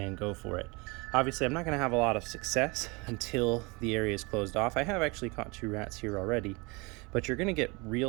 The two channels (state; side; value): quieter; left; 27.2 dB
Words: go for it. Obviously, I'm not gonna have a lot of success until the area is closed off. I have actually caught 2 rats here already, but you're gonna get